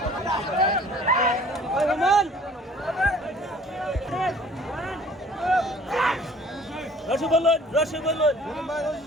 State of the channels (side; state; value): both; normal; correlation 0.52